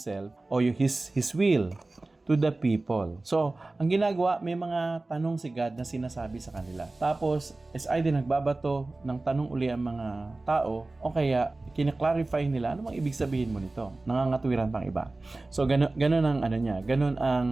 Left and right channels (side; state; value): left; quieter; 3.1 dB